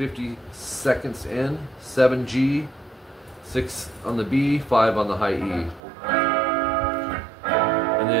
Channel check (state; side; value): drops out; left; at 5.8 s